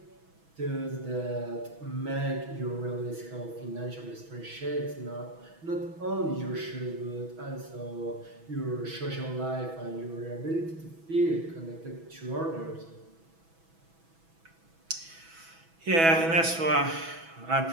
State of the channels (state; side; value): late; left; 6.1 ms